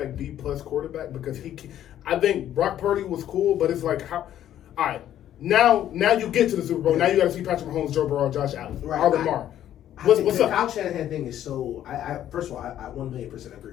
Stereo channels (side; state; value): right; quieter; 11.5 dB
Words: B+ quarterback because I think Brock Purdy was cool, but it's like how, all right. Now you get to the Super Bowl. Now you got to see Patrick Mahomes, Joe Burrow, Josh Allen, or Lamar. What's the up? Kyle Shanahan thing is so. First of all, I 1,000,000%